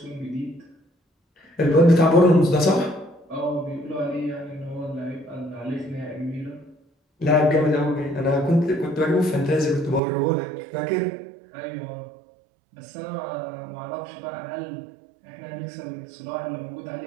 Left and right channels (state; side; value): drops out; left; at 10.0 s